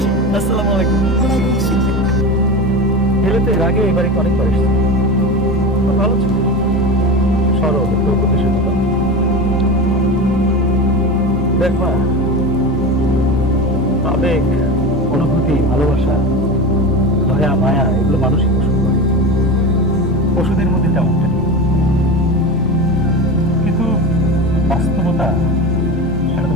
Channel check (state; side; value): normal; both; correlation 0.26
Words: আসসালামু আলাইকুম। ওয়ালাইকুম আসসালাম। এলে তো এর আগে এবারে অনেকবার এসেছি, খুব ভালো ছিল, সরল প্রতিশোধ। দেখ মা, আবেগ, অনুভূতি, ভালোবাসা, দয়া, মায়া এগুলো মানুষই পোষণ করে, পশুদের মধ্যে তেমনটা নেই। কিন্তু বাস্তবতা সেটা তো